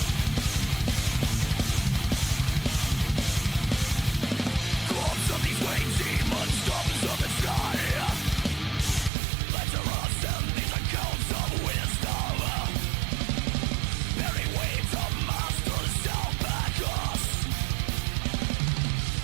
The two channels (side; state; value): left; drops out; at 9.1 s